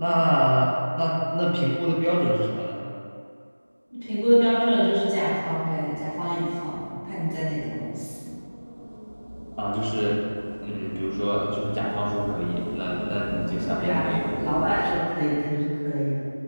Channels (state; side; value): inverted; both; correlation -1.00